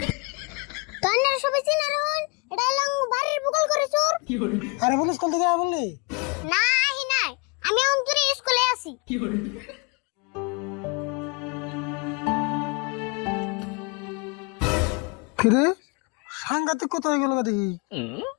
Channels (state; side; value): quieter; right; 30.6 dB